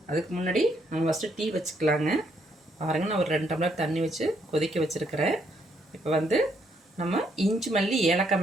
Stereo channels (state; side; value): normal; both; correlation 0.73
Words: அதுக்கு முன்னாடி நம்ம ஃபஸ்ட்டு டீ வச்சுக்கலாங்க. பாருங்கள், நான் ஒரு 2 டம்ளர் தண்ணி வச்சு கொதிக்க வச்சுருக்கிறேன். இப்போ வந்து நம்ம இஞ்சி மல்லி ஏலக்காய்